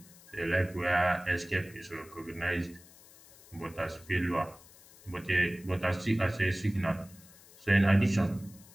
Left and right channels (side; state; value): left; noise; hiss, 23 dB below the sound